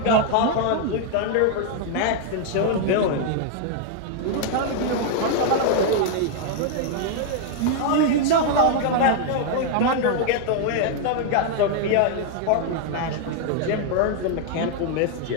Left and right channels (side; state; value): both; different; correlation 0.00